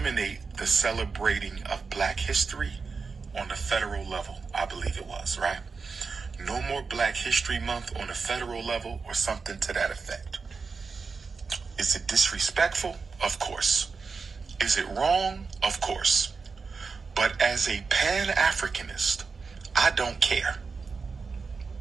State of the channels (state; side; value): quieter; left; 4.8 dB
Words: the celebrating of Black history on the federal level. I believe it was, right? No more Black History Month on the federal level or something to that effect. Is it disrespectful? Of course. Is it wrong? Of course. But as a Pan-Africanist, I don't care.